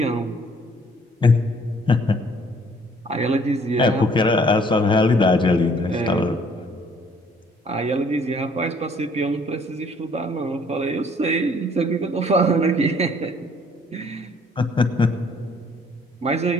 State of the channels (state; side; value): normal; both; correlation 0.60